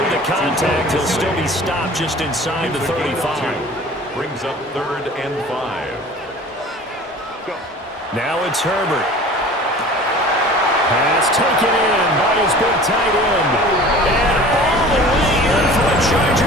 the contact, he'll still be stopped just inside the 35. Brings up 3rd and 5. Now it's Herbert. Pass taken in by his big tight end. And all the way in for a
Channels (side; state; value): both; normal; correlation 0.43